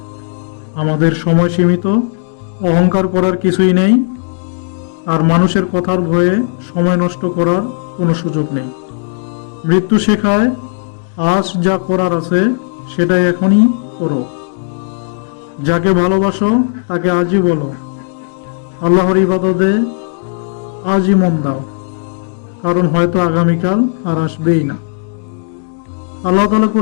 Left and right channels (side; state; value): right; silent; digital silence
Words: আমাদের সময় সীমিত, অহংকার করার কিছুই নেই, আর মানুষের কথার ভয়ে সময় নষ্ট করার কোনো সুযোগ নেই। মৃত্যু শেখায় আজ যা করার আছে সেটাই এখনই করো। যাকে ভালোবাসো তাকে আজই বলো, আল্লাহর ইবাদতে আজই মন দাও, কারণ হয়তো আগামীকাল আর আসবেই না। আল্লাহ তাআলা